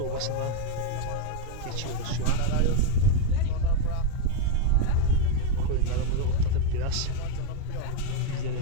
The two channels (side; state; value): both; different; correlation 0.02